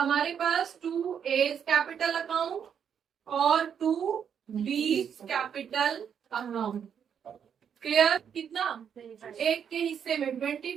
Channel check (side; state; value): left; quieter; 7.9 dB